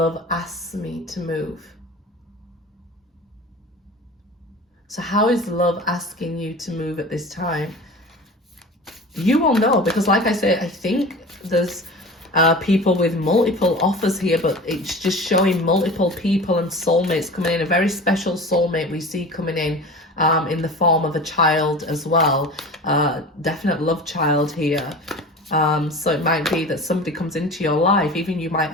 asks me to move. So how is love asking you to move at this time? You will know, because like I said, I think there's people with multiple offers here, but it's just showing multiple people and soulmates coming in. A very special soulmate we see coming in the form of a child as well. Definite love child here. So it might be that somebody comes into your life, even you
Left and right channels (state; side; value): normal; both; correlation 0.36